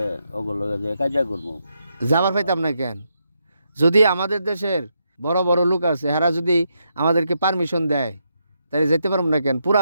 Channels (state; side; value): inverted; both; correlation -0.81